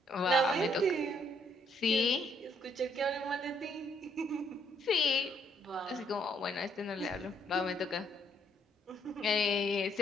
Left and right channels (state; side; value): normal; both; correlation 0.70